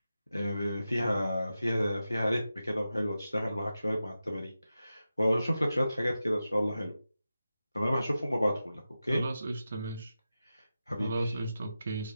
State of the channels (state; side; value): inverted; both; correlation -0.92